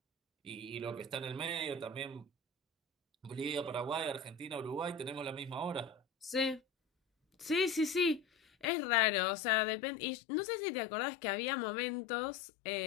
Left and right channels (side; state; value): right; drops out; at 8.7 s